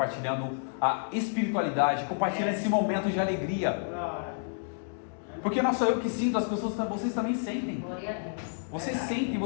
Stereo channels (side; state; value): right; silent; digital silence